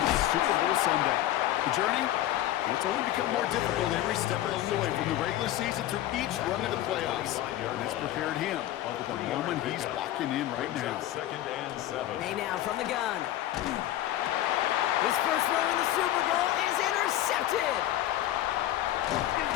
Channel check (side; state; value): right; quieter; 13.7 dB